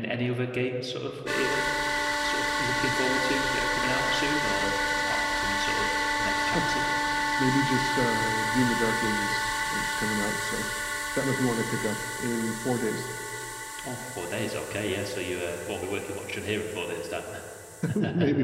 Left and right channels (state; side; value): identical; both; correlation 1.00